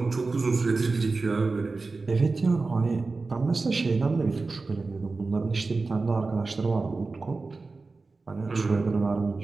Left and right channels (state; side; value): quieter; left; 3.8 dB